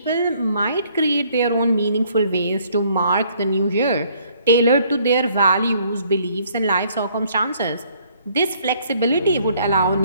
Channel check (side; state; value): both; inverted; correlation -0.63